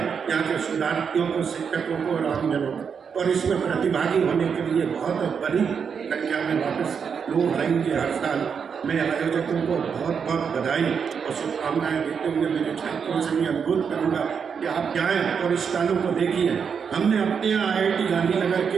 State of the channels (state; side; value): quieter; left; 6.6 dB